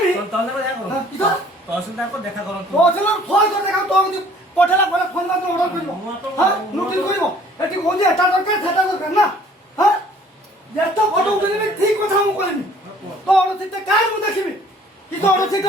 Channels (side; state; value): both; normal; correlation 0.55